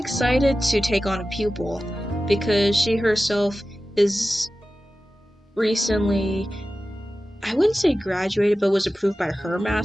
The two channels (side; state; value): both; normal; correlation 0.95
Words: to take on a pupil because she herself is recently, I wouldn't say graduated, but was approved by her